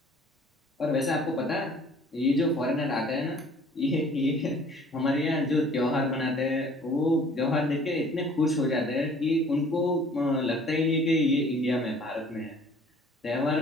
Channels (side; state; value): both; normal; correlation 0.53